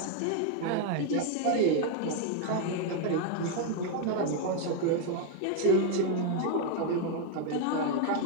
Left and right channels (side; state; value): both; different; correlation 0.01